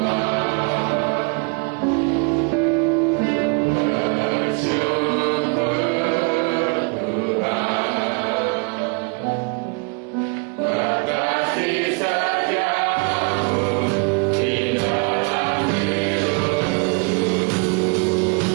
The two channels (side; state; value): left; quieter; 34.7 dB